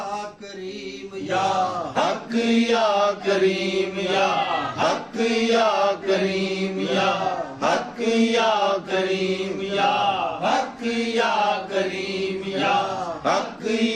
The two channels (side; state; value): both; identical; correlation 1.00